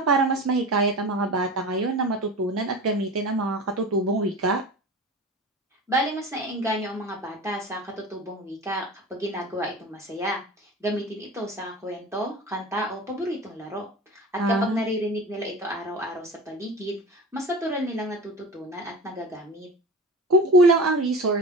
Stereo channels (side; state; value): both; normal; correlation 0.33